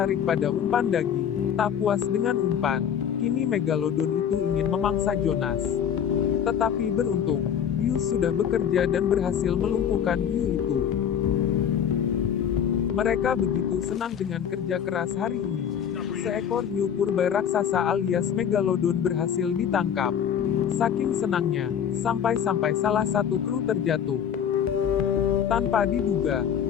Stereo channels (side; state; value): right; quieter; 8.6 dB